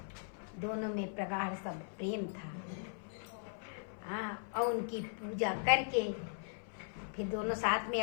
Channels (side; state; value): right; silent; 52 dB below the other